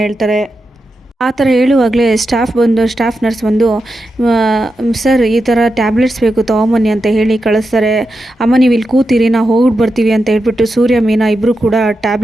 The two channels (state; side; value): normal; both; correlation 0.88